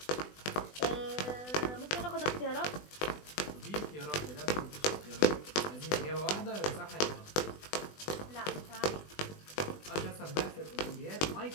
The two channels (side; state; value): right; late; 20 ms